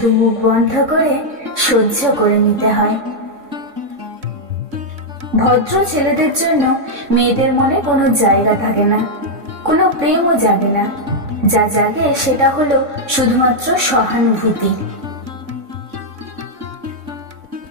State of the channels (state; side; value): late; left; 3.6 ms